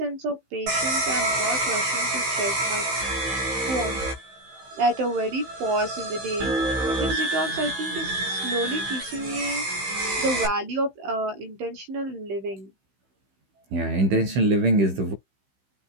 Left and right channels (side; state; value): left; late; 15 ms